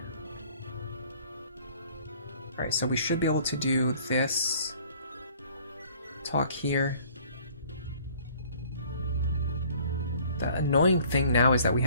Alright, so we should be able to do this. Talk here. The annoying thing now is that we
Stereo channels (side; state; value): both; inverted; correlation -0.54